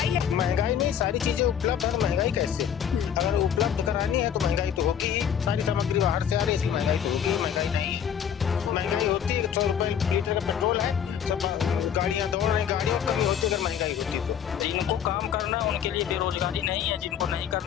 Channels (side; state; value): right; quieter; 8.6 dB